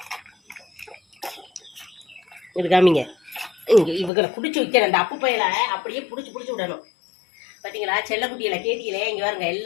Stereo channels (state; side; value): drops out; right; at 4.1 s